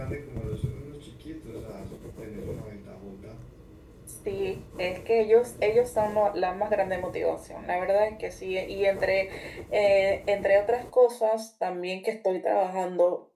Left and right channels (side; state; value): both; identical; correlation 1.00